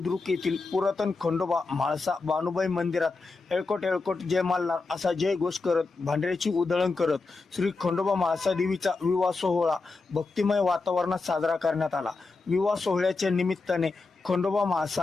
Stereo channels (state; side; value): quieter; right; 3.9 dB